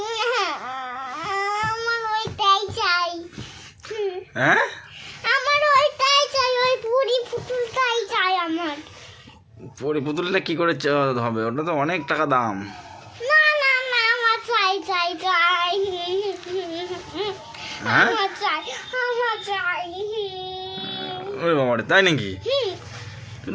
আমার ওইটাই চাই। হ্যাঁ, আমার ওইটাই চাই, ওই পরি পুতুলটাই চাই আমার। পরি পুতুলটা কি করে হবে? ওটা তো অনেক টাকা দাম। না না না, আমার চাই চাই চাই, হ্যাঁ, আমার চাই, আমার চাই। ওরে বাবারে, তাই নাকি?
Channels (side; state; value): both; identical; correlation 1.00